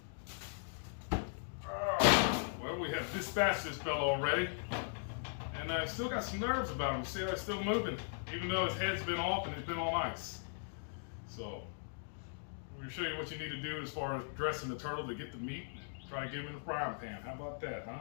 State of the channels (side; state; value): right; silent; digital silence